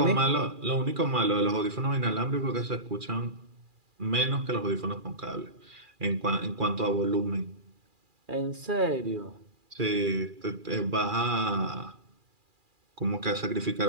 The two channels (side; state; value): left; late; 2.4 ms